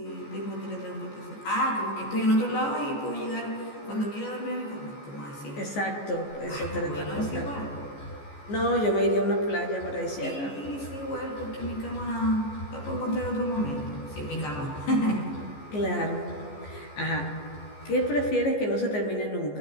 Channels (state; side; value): late; right; 14 ms